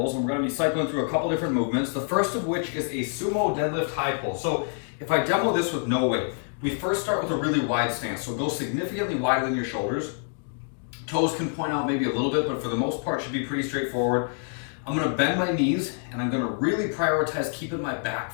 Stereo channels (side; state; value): right; silent; 61 dB below the other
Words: and we're gonna be cycling through a couple different movements. The first of which is a sumo deadlift high pull. So if I demo this with no weight, we first start with a really wide stance. So go significantly wider than your shoulders. Toes can point out maybe a little bit, but for the most part should be pretty straightforward. I'm gonna bend my knees and I'm gonna really prioritize keeping my